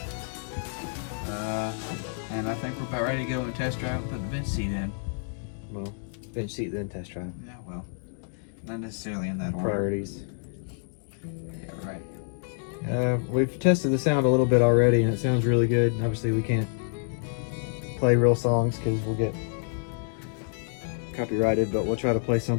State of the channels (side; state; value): right; silent; digital silence